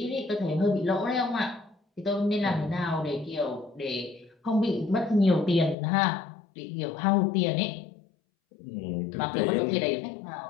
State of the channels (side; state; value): right; drops out; at 5.8 s